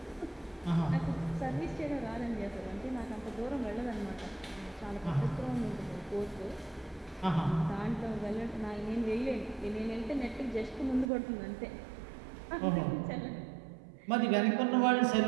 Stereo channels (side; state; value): left; drops out; at 11.1 s